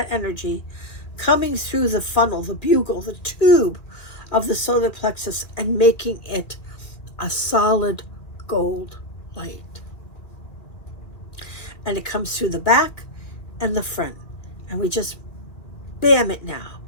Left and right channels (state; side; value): late; right; 2.4 ms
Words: energy coming through the funnel, the bugle, the tube of the solar plexus, and making it a solid gold light. And it comes through the back and the front. And we just bam it now